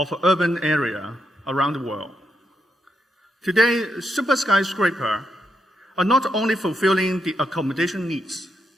urban area around the world. Today, super skyscrapers are not only fulfilling the accommodation needs,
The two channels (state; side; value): normal; both; correlation 0.82